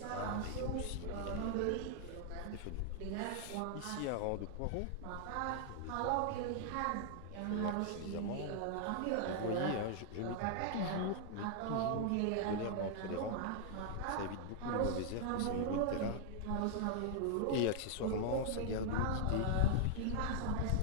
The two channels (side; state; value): both; different; correlation 0.00